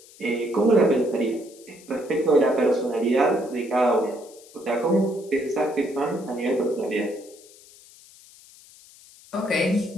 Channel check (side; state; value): left; noise; hiss, 23 dB below the sound